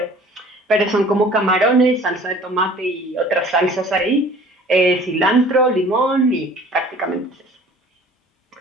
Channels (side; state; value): both; normal; correlation 0.49